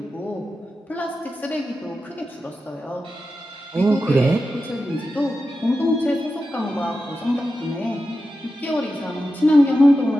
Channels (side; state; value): both; normal; correlation 0.91